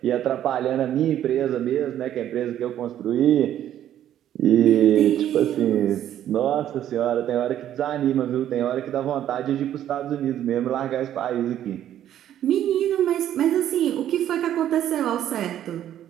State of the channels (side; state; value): left; quieter; 11.2 dB